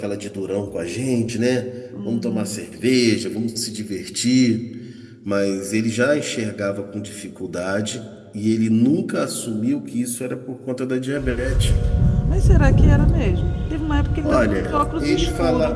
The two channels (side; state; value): both; identical; correlation 1.00